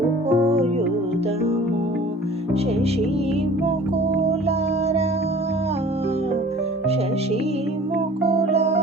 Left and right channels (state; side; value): normal; both; correlation 0.47